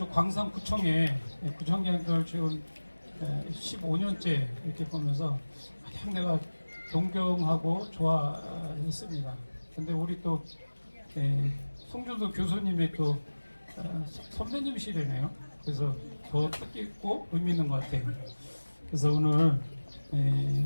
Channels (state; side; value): inverted; both; correlation -1.00